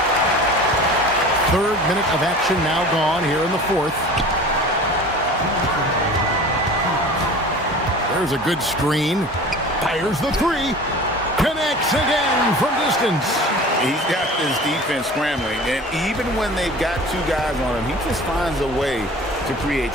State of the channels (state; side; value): normal; both; correlation 0.40